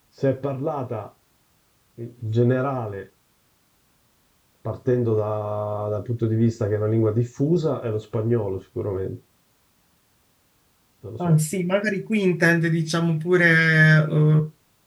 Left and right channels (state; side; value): identical; both; correlation 1.00